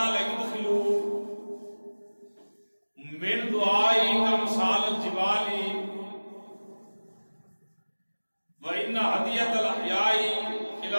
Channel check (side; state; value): both; inverted; correlation -1.00